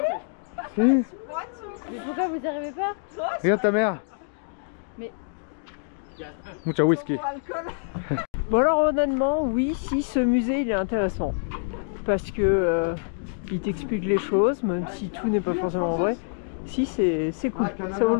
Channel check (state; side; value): silent; right; digital silence